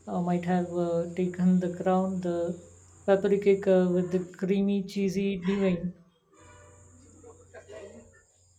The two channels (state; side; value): identical; both; correlation 1.00